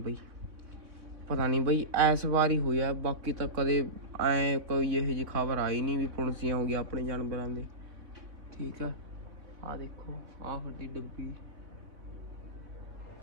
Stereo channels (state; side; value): late; left; 3.7 ms